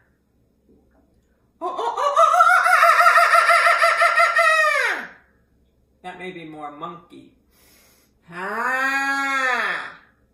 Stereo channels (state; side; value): identical; both; correlation 1.00